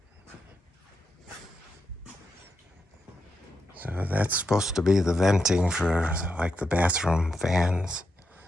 So that's supposed to be the venting for like the bathroom fans.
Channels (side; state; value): both; normal; correlation 0.85